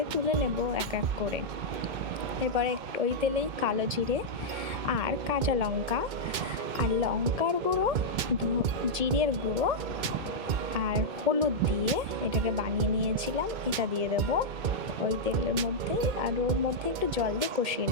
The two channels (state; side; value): late; left; 2.1 ms